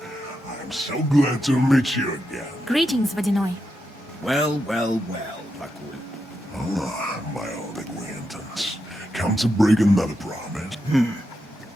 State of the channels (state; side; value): normal; both; correlation 0.85